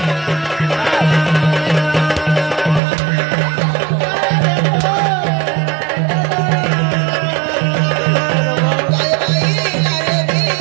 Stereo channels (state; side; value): drops out; left; at 2.8 s